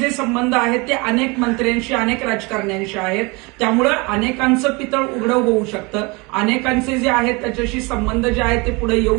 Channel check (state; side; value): quieter; left; 27.0 dB